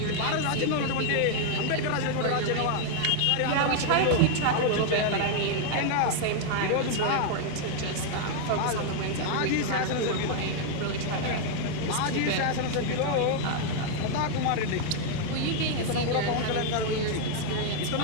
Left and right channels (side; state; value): both; different; correlation 0.00